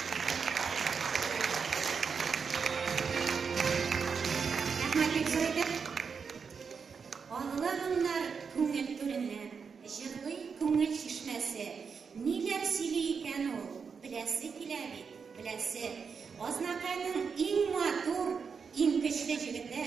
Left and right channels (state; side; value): quieter; left; 5.8 dB